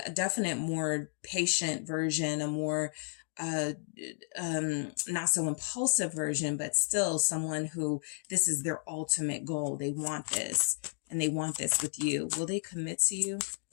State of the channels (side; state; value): right; silent; 56 dB below the other